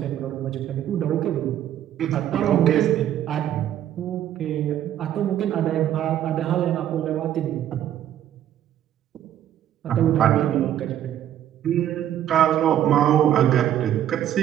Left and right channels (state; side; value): quieter; left; 11.2 dB